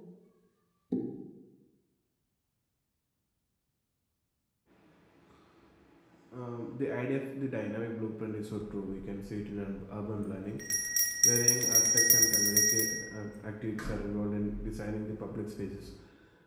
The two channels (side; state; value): both; identical; correlation 1.00